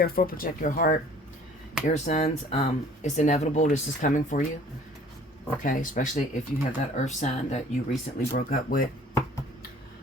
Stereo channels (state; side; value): normal; both; correlation 0.51